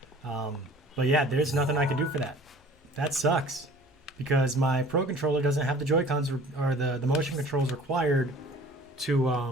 But yeah, there's nothing I can do for that. That sucks. Because my Pro Controller doesn't have the Joy-Cons or the motion controls required to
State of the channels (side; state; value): both; normal; correlation 0.48